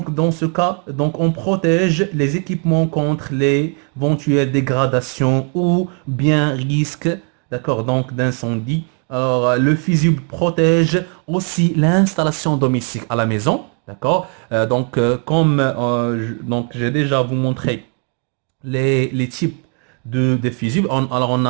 dans ce cas, donc on protège les équipements contre les éventuelles dégradations ou bien risques, d'accord, donc d'incendie. Alors, le fusible protège aussi l'installation domestique à la maison. D'accord? Donc j'ai déjà vous montré les types de fusibles. Alors, on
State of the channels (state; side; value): quieter; left; 39.0 dB